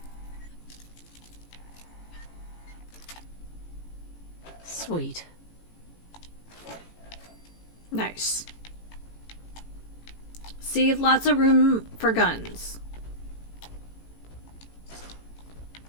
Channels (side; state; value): right; late; 18 ms